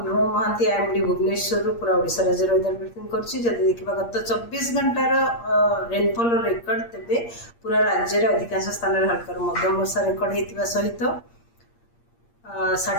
महांती आईएमडी भुवनेश्वर पूरा ओडिशा राज्य वेदर ब्रिफिंग करछि। जदि देखिबा गत 24 घंटार रेनफॉल रेकर्ड तेबे पूरा राज्य रे अधिकांश स्थान रे हल्का मध्यम वर्षा रेकर्ड हेतिबा सहित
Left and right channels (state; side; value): late; right; 8.6 ms